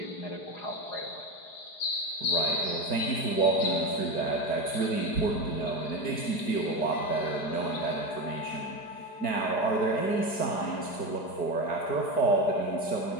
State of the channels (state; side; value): late; right; 4.9 ms